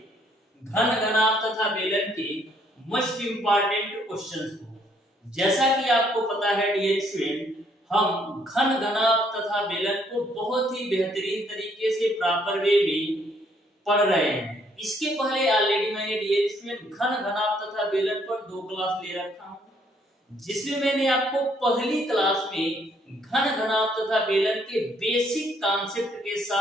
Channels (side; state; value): both; normal; correlation 0.67